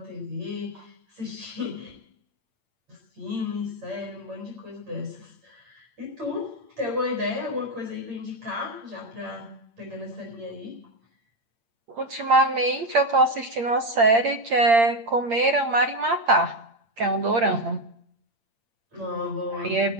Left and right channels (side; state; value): left; late; 8.7 ms